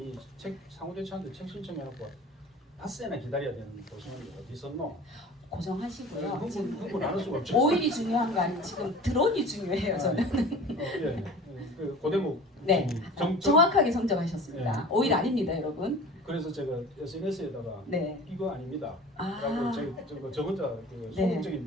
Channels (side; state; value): both; normal; correlation 0.40